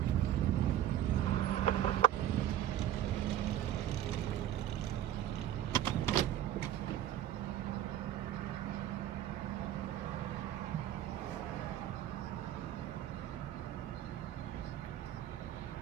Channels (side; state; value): left; quieter; 11.5 dB